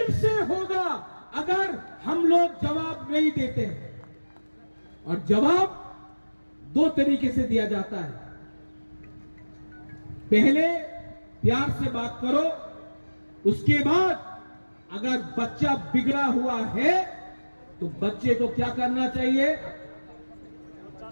अगर हम लोग जवाब नहीं देते हैं। और जवाब दो तरीके से दिया जाता है। पहले प्यार से बात करो, उसके बाद अगर बच्चा बिगड़ा हुआ है तो बच्चे को क्या करना चाहिए?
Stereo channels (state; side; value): inverted; both; correlation -1.00